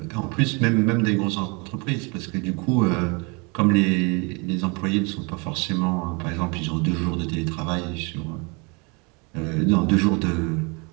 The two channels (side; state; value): left; quieter; 31.0 dB